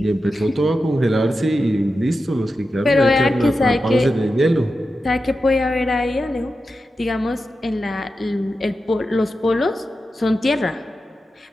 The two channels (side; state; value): both; normal; correlation 0.91